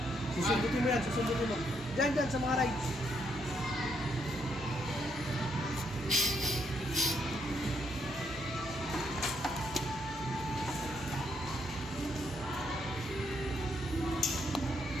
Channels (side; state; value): both; normal; correlation 0.75